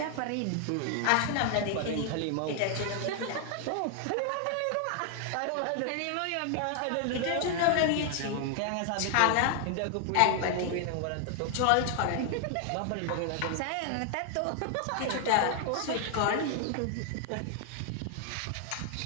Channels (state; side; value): different; both; correlation 0.00